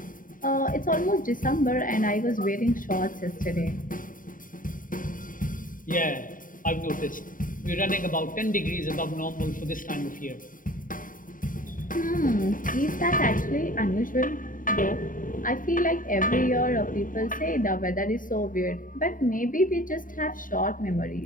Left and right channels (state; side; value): late; right; 0.39 ms